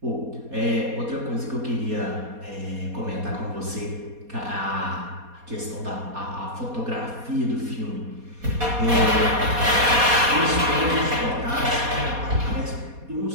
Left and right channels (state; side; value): late; left; 4.2 ms